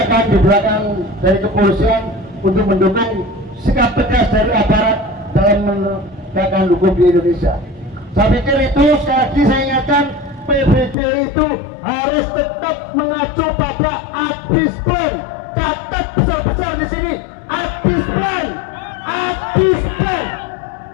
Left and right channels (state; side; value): drops out; right; at 11.0 s